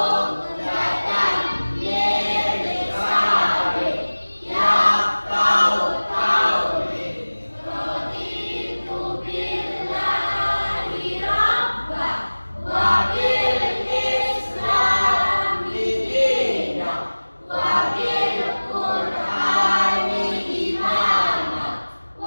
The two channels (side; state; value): both; inverted; correlation -1.00